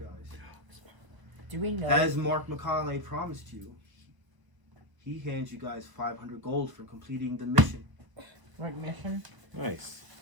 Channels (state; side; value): late; left; 1.0 ms